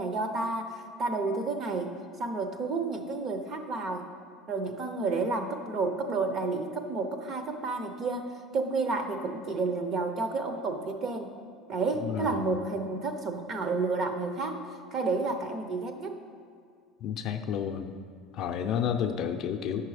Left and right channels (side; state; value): both; normal; correlation 0.44